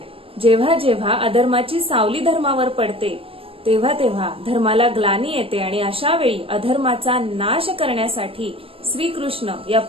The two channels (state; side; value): late; left; 0.27 ms